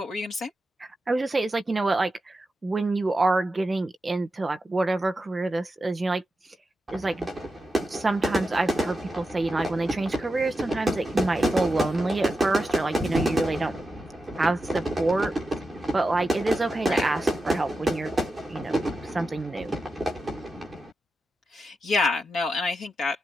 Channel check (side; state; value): both; normal; correlation 0.90